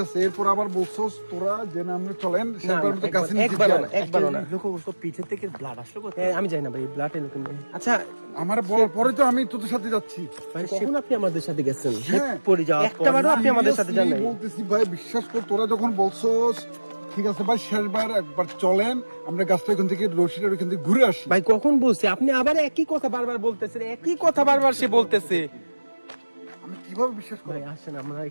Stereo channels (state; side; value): inverted; both; correlation -1.00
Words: এরপর আবার বলছো তোরা যে না আমরা চলেন সেবার মতো গাছের নিচে একবারও না, যাই। একবারও না। লক্ষ্য করছো পিছে থেকে ব্লাড আসলো কোথা এ, আমি যাই না ভাই, ব্লাড এলো কেন? আচ্ছা আমার বলার পরে তো আমি তোদের সাথে যাচ্ছি। ভাই কখন আপনি আমাদের সাথে গেছেন? হ্যাঁ পড়ে যাওয়ার একটা বারও আপনি আমাদের সাথে যান নাই। Seriously বলতেছি ভাই, বিশ্বাস কর, তোরা যখন বলছোস ঠিক আছে ভাই শেষবার একবার চলেন আমরা গাছটা ওখান থেকে রশিটার ওখান থেকে ঘুরে আসি। ভাই কখন বলছি? আপনি আবার একই কথা বারবার বলতেছেন, একই কথা বারবার সে বলতেছে। আমি কিভাবে বিশ্বাস করি? ভাই আসেন আমরা